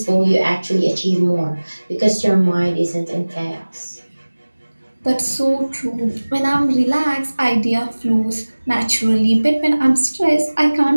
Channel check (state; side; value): inverted; both; correlation -1.00